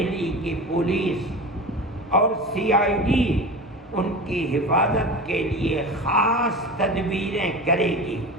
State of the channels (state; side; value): normal; both; correlation 0.30